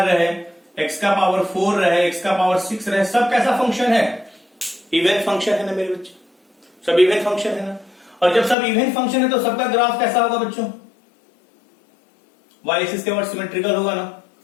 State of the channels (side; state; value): right; drops out; at 8.6 s